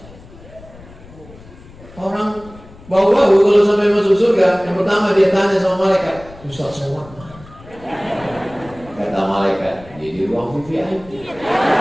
Orang bau-bau kalau sampai masuk surga, yang pertama dia tanya sama malaikat, Ustaz Somad mana? Kata malaikat, dia di ruang VIP.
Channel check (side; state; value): left; noise; rumble, 20 dB below the sound